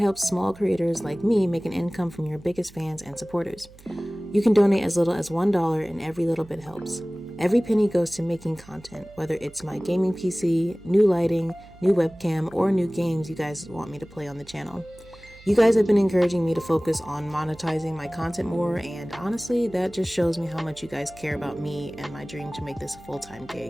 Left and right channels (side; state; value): right; noise; hum, 23 dB below the sound